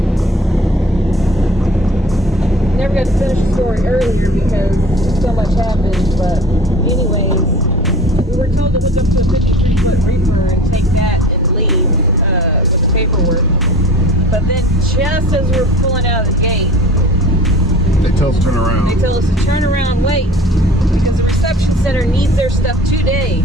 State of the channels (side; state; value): both; normal; correlation 0.43